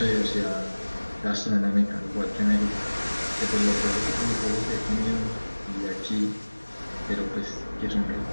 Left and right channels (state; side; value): inverted; both; correlation -1.00